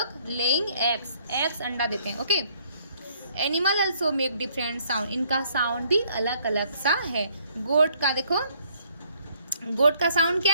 लेइंग एग्स अंडा देते हैं। Okay, animal also make different sound, इनका साउंड भी अलग अलग सा है। गोट का देखो, गोट का साउंड क्या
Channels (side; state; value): both; inverted; correlation -0.65